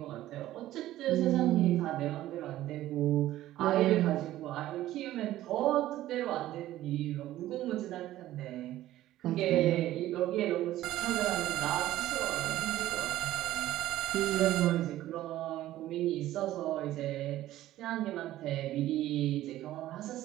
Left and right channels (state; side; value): quieter; left; 14.4 dB